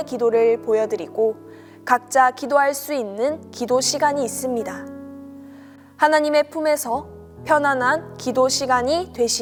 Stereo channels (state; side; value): identical; both; correlation 1.00